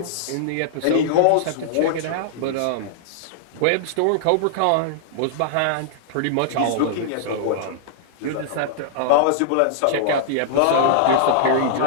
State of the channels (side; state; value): both; different; correlation -0.01